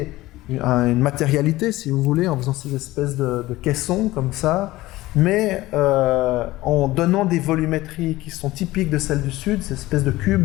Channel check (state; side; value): quieter; right; 17.9 dB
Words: une matérialité, si vous voulez, en faisant ces espèces de caissons comme ça, mais en donnant des volumétries qui sont typiques de celles du Sud, ces espèces de